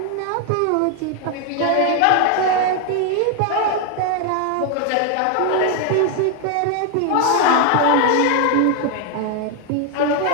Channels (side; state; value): both; different; correlation 0.01